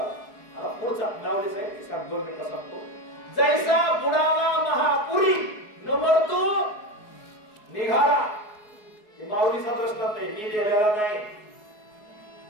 पुढचा नावलेच आहे की सांग 2 मिनिटं सांगतो. जैसा बुडाला महापुरी न मरतो निघाला. हे माऊलीचा प्रश्न नाही, मी लिहिलेला नाही.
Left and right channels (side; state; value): right; late; 4.7 ms